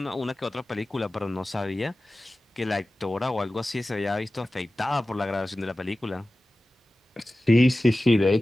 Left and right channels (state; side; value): normal; both; correlation 0.96